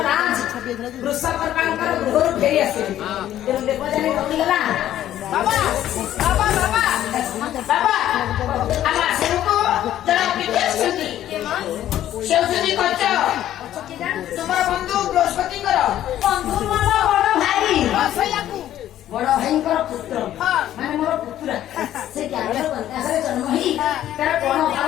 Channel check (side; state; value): right; quieter; 12.2 dB